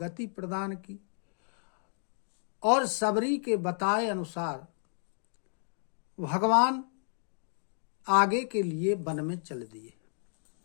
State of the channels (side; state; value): right; silent; digital silence